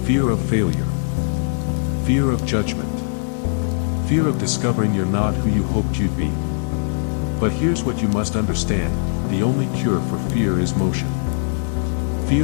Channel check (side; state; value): right; silent; digital silence